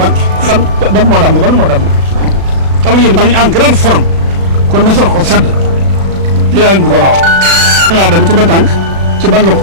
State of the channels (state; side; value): late; left; 36 ms